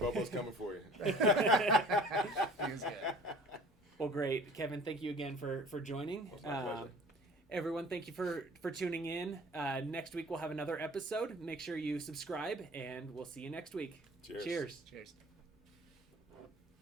coming for you. He was good. Well, great, Kevin. Thank you again for joining. It's my pleasure. Everyone, thank you for tuning in. Next week we'll have another episode. Make sure you subscribe, and we'll see you next week. Cheers. Cheers.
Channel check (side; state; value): both; normal; correlation 0.47